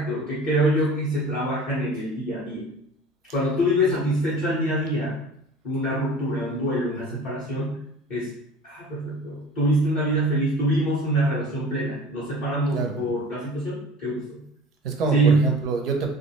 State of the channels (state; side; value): normal; both; correlation 0.42